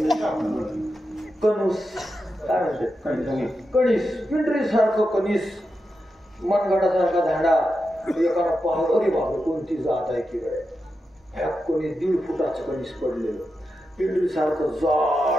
ना. कणूस काय म्हणते? कणीस. पिंडरी सारखं कणीस. मनगटासारखा झाडा. एकाला पाहत अरे बाबा कोणती जात आहे की काय? ह्या कोणी 1.5 फुटाचं कणीस पडलेलं. पिंडरी सारखं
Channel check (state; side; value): normal; both; correlation 0.88